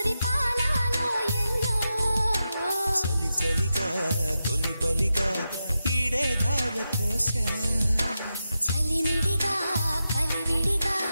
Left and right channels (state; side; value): inverted; both; correlation -0.89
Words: పాలలో ఎల్లో చలి చలిగా తొలి బలిగా ఈడే ధార పోసా చలిమిడిగా కలివిడిగా